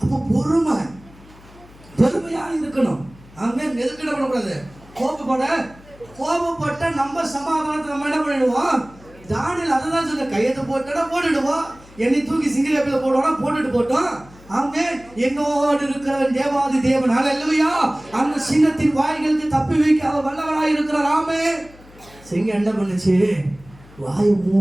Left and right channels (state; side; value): noise; left; hum, 23 dB below the sound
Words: அப்போ பொறுமையாக இருக்கணும். அங்கே எதுக்கு என்ன பண்ணக்கூடாது, கோபப்பட்ட நம்ம சமாதானத்தை நம்ம என்ன பண்ணிடுவோம். தானியேல் அதை தான் சொல்ல, கையெழுத்து போட்டோன்னா போட்டுடுவோம், என்னை தூக்கி சிங்கிலேப்பில் போட்டோன்னா போட்டுட்டு போட்டோம். ஆமே. என்னோடு இருக்கிறவன் தேவாதி தேவன். அல்லேலூயா. அந்த சிங்கத்தின் வாய்களுக்கு தப்பி வைக்க அவர் வல்லவராய் இருக்கிறார். ஆமே. சிங்கம் என்ன பண்ணுச்சு, வாயை